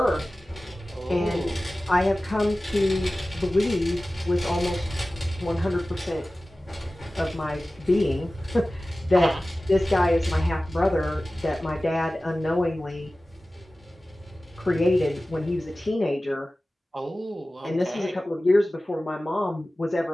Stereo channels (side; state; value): both; normal; correlation 0.96